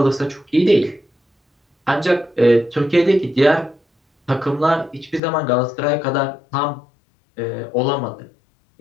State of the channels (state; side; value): drops out; right; at 5.2 s